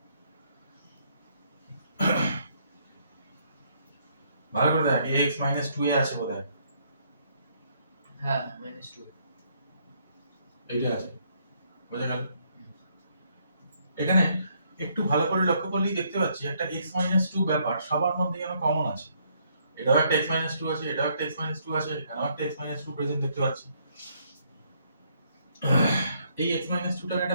ভালো করে দেখ ax minus 2 এ আছে বোধহয় হ্যাঁ minus 2 এইটা আছে বোঝা গেল এখানে একটু ভালো করে লক্ষ্য করলেই দেখতে পাচ্ছি একটা x minus 2 ব্যাপার সবার মধ্যে যেন কমন আছে এটাও একটা x minus 2 আছে এটাও একটা x minus 2 আছে এখানেও একটা x minus 2 প্রেজেন্ট দেখতে পাচ্ছি এই x minus 2 টাকে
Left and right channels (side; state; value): both; inverted; correlation -0.69